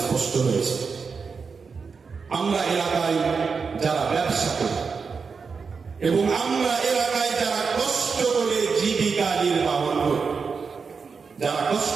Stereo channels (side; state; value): left; quieter; 5.3 dB